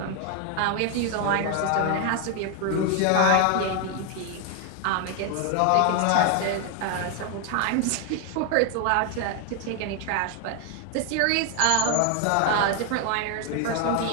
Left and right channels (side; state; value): both; different; correlation 0.01